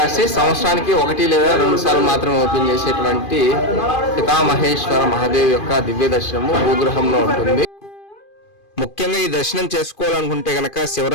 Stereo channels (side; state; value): right; late; 2.4 ms